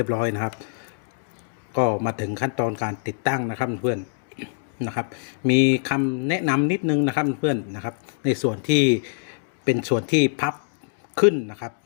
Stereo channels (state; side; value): silent; right; digital silence